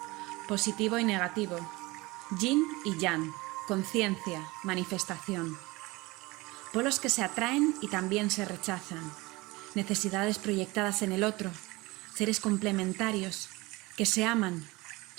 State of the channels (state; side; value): quieter; left; 22.5 dB